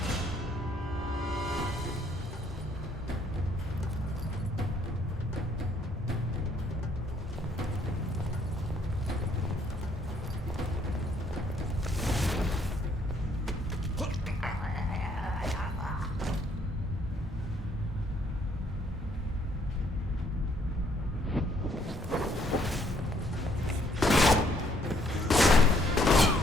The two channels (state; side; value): normal; both; correlation 0.67